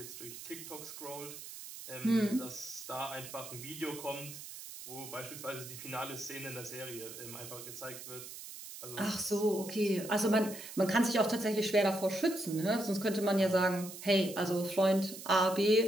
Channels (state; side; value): noise; right; hiss, 12 dB below the sound